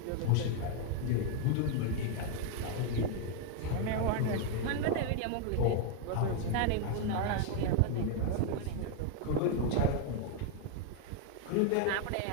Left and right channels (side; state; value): both; different; correlation 0.00